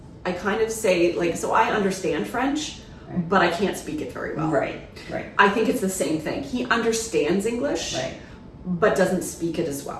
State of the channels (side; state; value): both; identical; correlation 1.00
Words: kind of say, like, so I understand French, but I can't speak it very well. Right. I think it's the same thing. He understands English, but doesn't speak it as